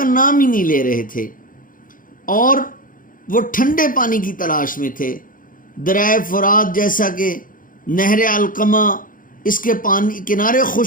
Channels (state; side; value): late; right; 0.40 ms